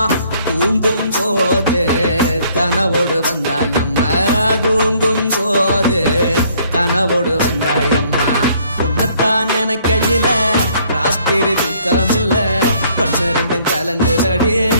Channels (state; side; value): inverted; both; correlation -0.63